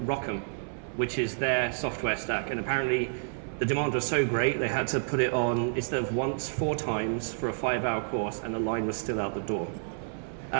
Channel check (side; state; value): left; silent; 58 dB below the other